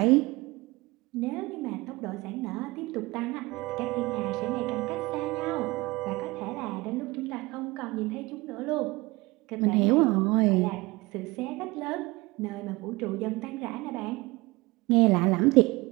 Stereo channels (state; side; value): quieter; left; 22.4 dB